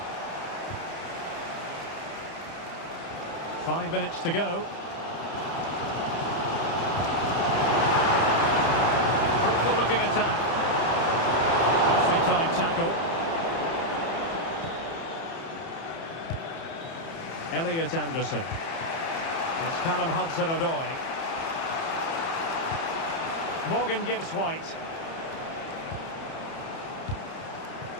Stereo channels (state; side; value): late; right; 30 ms